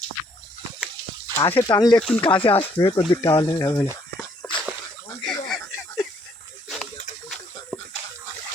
কাছে টানলে একটু কাছে আসবে, কোন দিক টানলে হবে না।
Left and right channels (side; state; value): both; normal; correlation 0.67